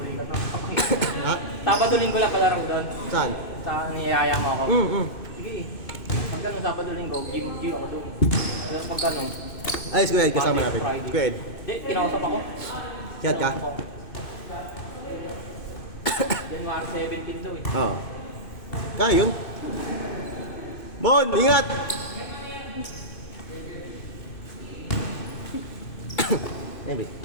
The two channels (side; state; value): right; late; 2.6 ms